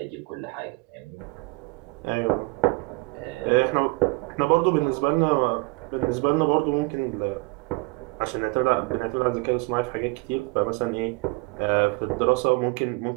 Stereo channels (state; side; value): quieter; left; 27.1 dB